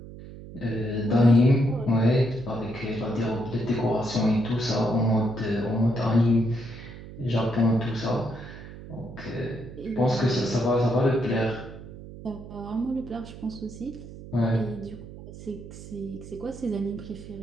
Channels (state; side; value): noise; right; hum, 14 dB below the sound